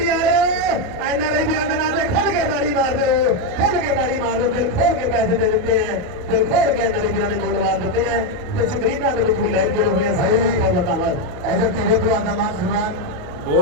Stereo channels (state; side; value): late; left; 28 ms